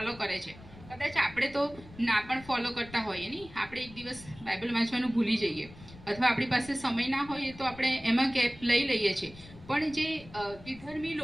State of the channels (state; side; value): noise; left; rumble, 19 dB below the sound